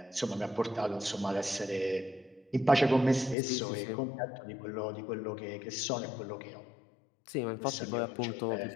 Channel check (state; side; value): drops out; right; at 3.4 s